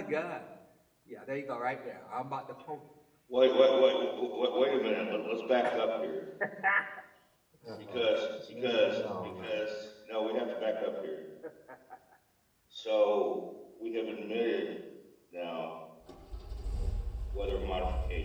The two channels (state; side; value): identical; both; correlation 1.00